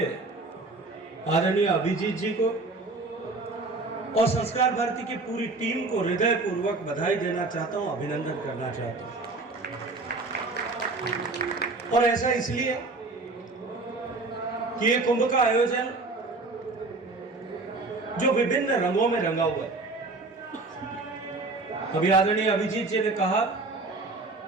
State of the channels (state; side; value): quieter; left; 3.4 dB